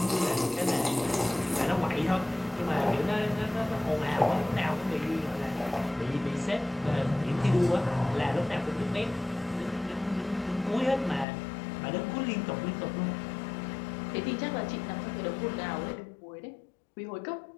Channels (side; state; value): right; drops out; at 11.2 s